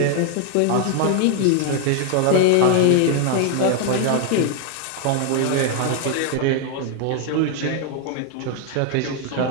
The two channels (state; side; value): different; both; correlation 0.00